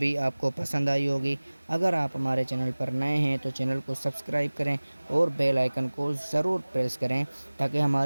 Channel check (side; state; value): both; inverted; correlation -1.00